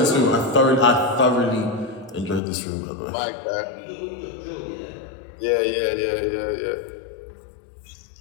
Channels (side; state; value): right; drops out; at 2.4 s